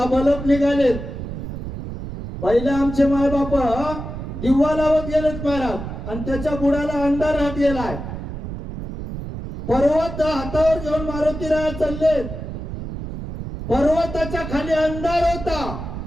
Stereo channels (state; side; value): noise; right; rumble, 8 dB below the sound